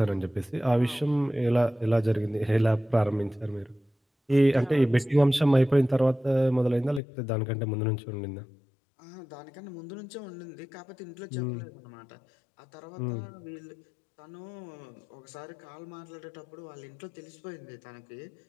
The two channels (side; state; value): right; drops out; at 7.0 s